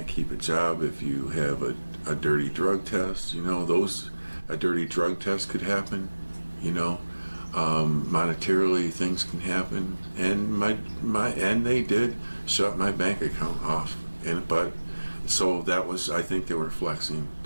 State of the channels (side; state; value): both; inverted; correlation -1.00